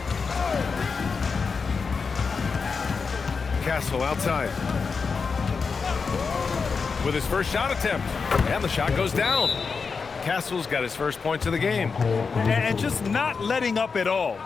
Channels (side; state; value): right; quieter; 5.1 dB